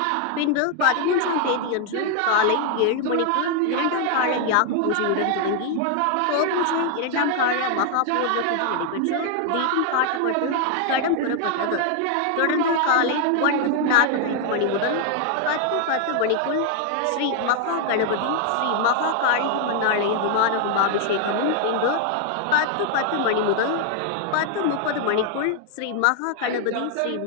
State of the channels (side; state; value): both; different; correlation 0.00